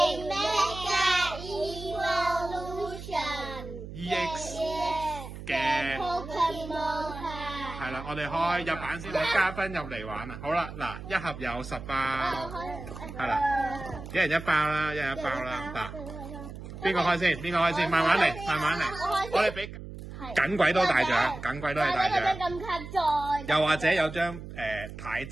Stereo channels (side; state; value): right; noise; hum, 11 dB below the sound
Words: mega evolution EX 嘅 Pokemon 卡。係啦，我哋開日版先，睇嘉賓入嚟玩啊！好啦，嗱，一盒有10包，係啦，一人一包啦，一人一包啦。嗱，邊個開先？邊個開先？慢慢嚟，慢慢嚟。我哋俾緊鬼多大獎，緊鬼都係大獎。咁卡在。又或者有張太